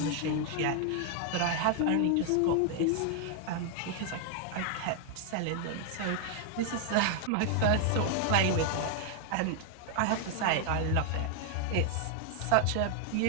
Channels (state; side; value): different; both; correlation 0.00